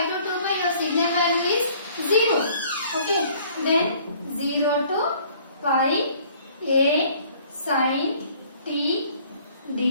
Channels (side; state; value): both; inverted; correlation -0.57